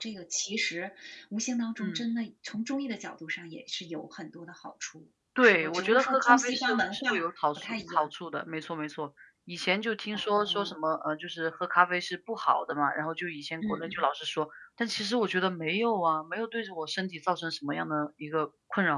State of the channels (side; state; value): both; identical; correlation 1.00